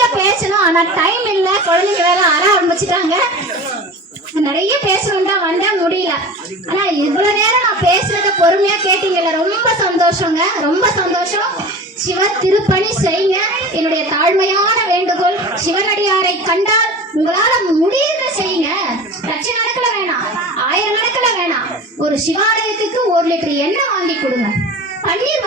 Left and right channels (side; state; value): both; normal; correlation 0.35